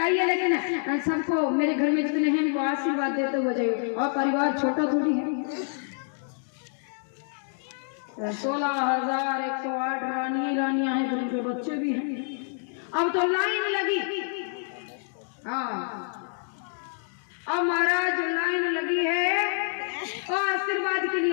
लेकिन सबको मेरे घर में जितने हैं उनको आशीर्वाद देते हुए जाइए, और परिवार छोटा थोड़ी है। 16,108 रानियां हैं, उनके बच्चे भी हैं। अब तो लाइन लगी। हाँ, अब महाराज लाइन लगी है और आशीर्वाद के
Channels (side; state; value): right; silent; 60 dB below the other